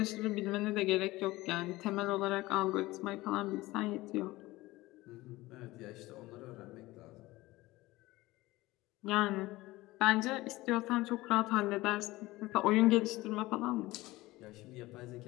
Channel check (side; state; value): right; quieter; 19.1 dB